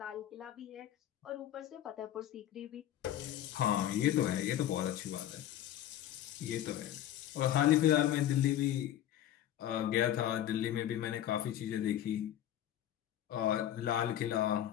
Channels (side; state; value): right; quieter; 11.9 dB